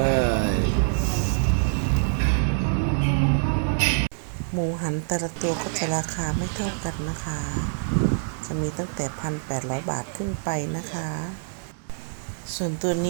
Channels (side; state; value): left; silent; 59 dB below the other